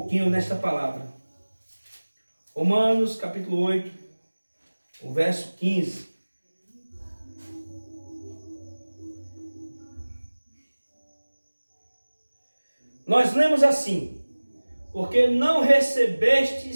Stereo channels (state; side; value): inverted; both; correlation -1.00